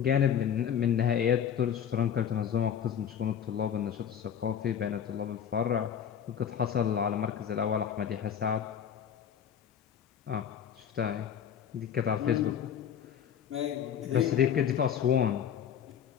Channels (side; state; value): right; quieter; 8.7 dB